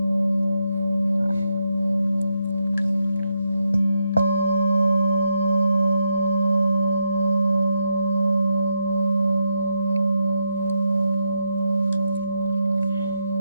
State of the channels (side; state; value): both; inverted; correlation -0.82